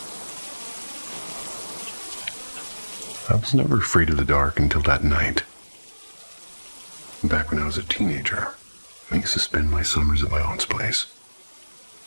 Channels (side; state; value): both; inverted; correlation -1.00